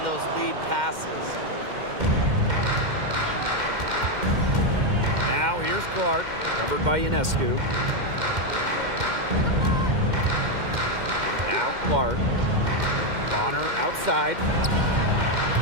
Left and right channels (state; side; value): late; left; 2.1 ms